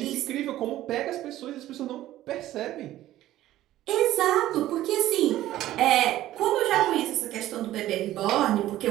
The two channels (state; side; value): quieter; left; 14.3 dB